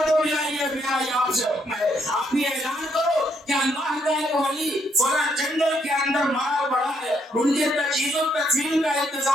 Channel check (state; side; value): normal; both; correlation 0.73